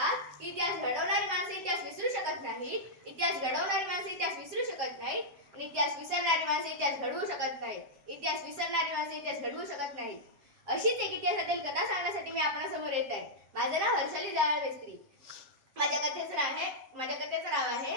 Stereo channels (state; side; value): late; left; 7.6 ms